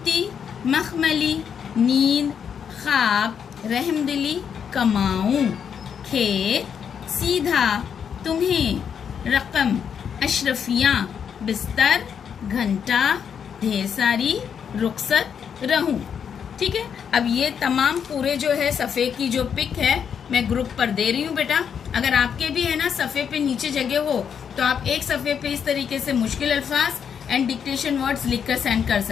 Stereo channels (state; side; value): quieter; right; 7.5 dB